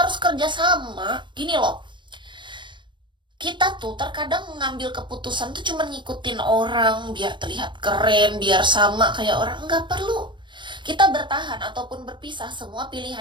kerjasama. Gini loh, kita tuh terkadang mengambil keputusan tuh cuma ngikutin orang biar terlihat keren, biar sama kayak orang. Nggak perlu. Kita bertahan ataupun berpisah, semua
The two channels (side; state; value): left; late; 0.23 ms